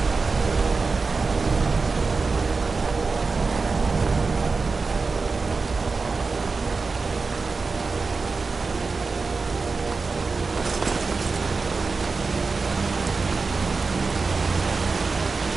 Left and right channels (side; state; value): left; quieter; 4.3 dB